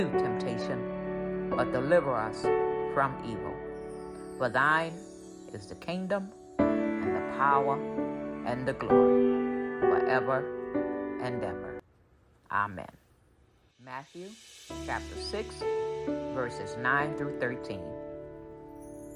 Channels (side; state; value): both; identical; correlation 1.00